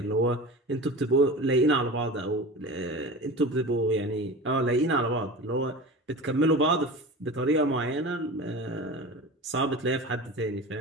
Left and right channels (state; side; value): normal; both; correlation 0.32